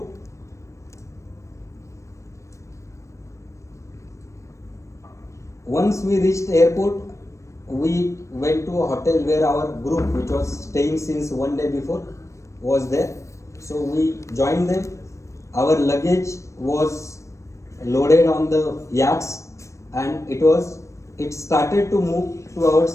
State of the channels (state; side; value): late; right; 0.15 ms